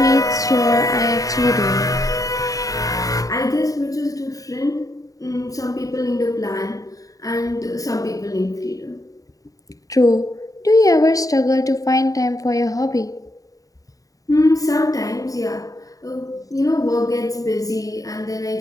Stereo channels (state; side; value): late; right; 0.17 ms